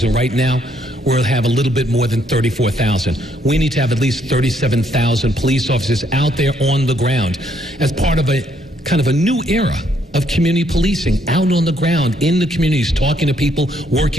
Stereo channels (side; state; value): both; normal; correlation 0.70